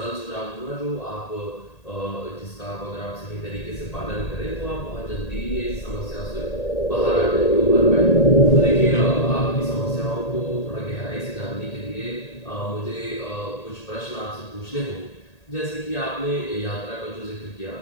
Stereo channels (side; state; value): right; late; 1.8 ms